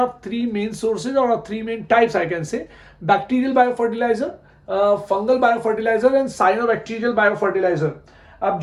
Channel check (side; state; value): both; identical; correlation 1.00